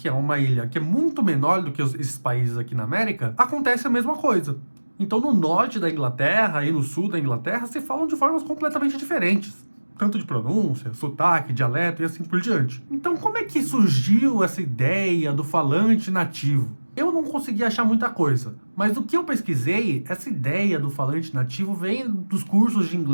é uma ilha que é muito menor do que esses países aqui na América, acontece a mesma coisa. Então no norte da Inglaterra e no sul da Inglaterra se falam de formas completamente diferentes. Tanto de pronúncia, sotaque, dialeto e assim por diante. Então como é que surgiu essa ideia do falante nativo? Eu não consegui achar muita coisa, mas do que eu pesquisei, essa ideia do falante nativo vem dos cursos de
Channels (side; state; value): both; inverted; correlation -1.00